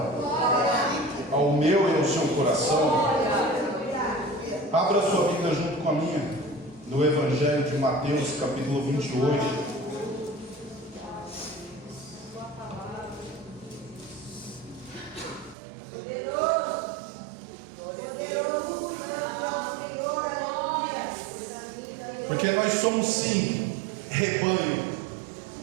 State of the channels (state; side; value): drops out; left; at 15.6 s